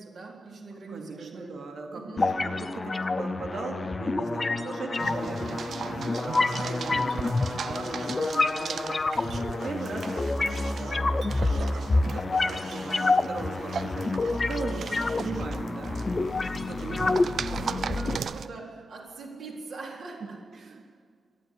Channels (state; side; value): normal; both; correlation 0.92